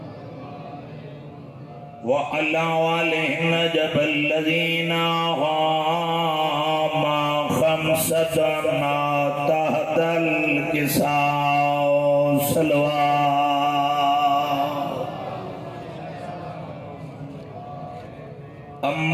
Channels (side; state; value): both; identical; correlation 1.00